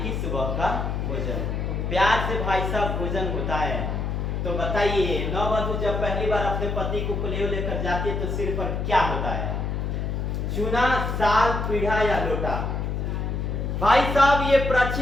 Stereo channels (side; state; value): left; noise; hum, 2 dB below the sound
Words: कि सुबह का भोजन। प्यार से भाई साहब भोजन होता है। तो बताइए, नववधु जब पहली बार अपने पति को कलेव लेकर जाती है तो सिर पर क्या होता है? चूना, साल, पीढ़ा या लोटा? भाई साहब ये